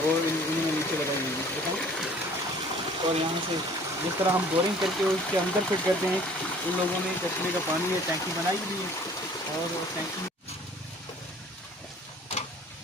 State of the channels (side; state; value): both; normal; correlation 0.52